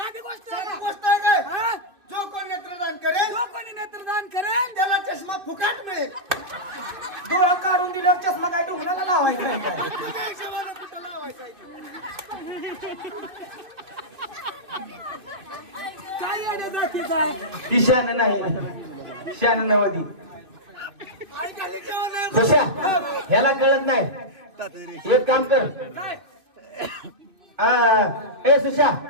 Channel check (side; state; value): left; late; 2.5 ms